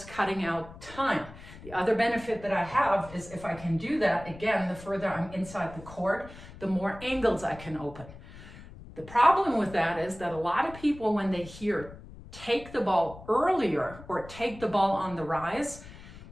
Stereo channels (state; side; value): noise; left; rumble, 17 dB below the sound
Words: cutting out time. The other benefit that I have is if I can do that, again, the further I'm inside the court, the more angles I can open. The problem with that is that a lot of people, when they hear take the ball earlier or take the ball on the rise,